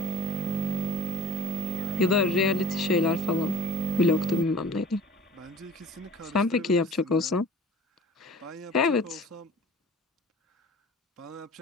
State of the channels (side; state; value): both; normal; correlation 0.43